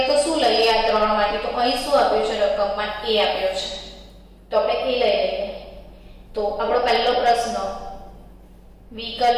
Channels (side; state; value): both; identical; correlation 1.00